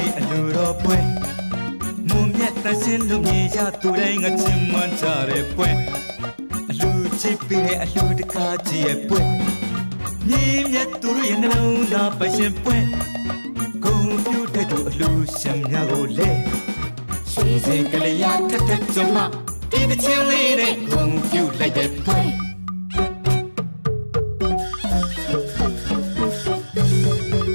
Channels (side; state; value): both; inverted; correlation -1.00